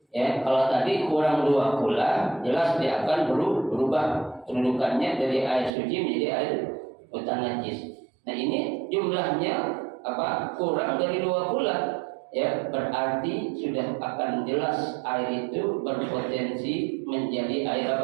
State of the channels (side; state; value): left; drops out; at 5.7 s